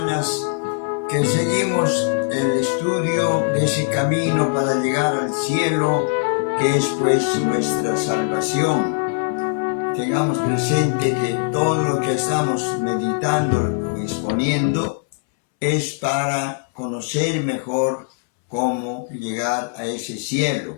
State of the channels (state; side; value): silent; right; 65 dB below the other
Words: días que seguimos el estudio de ese camino para llegar al cielo, que es pues nuestra salvación. Tengamos presente que todo lo que estamos meditando y exponiendo es para conocer mejor cómo llegar a ese